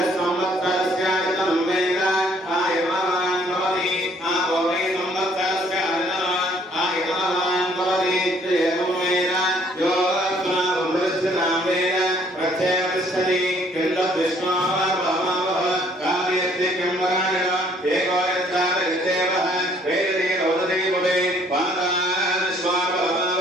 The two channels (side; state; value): both; normal; correlation 0.62